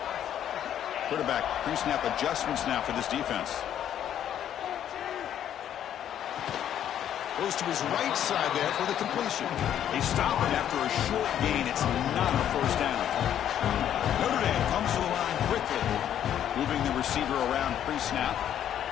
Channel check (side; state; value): right; quieter; 10.3 dB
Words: Quarterback pre-snap adjustments now for this defense. Goes to his right side there for the completion. They stop him after a short gain. It's not a 1st down. Notre Dame comes to the line quickly, moving the receiver around pre-snap.